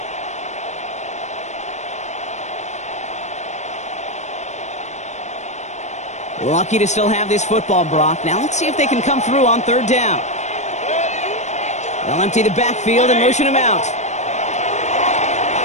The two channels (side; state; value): right; late; 0.34 ms